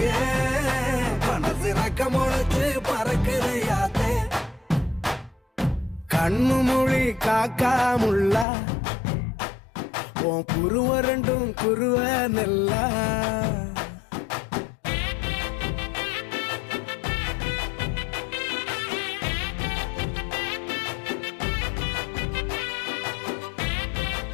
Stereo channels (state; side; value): drops out; right; at 8.5 s